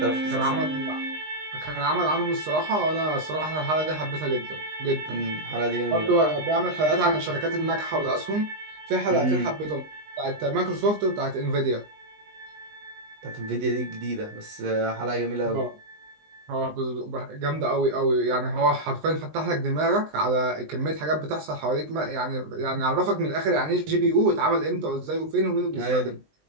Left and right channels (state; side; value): late; left; 20 ms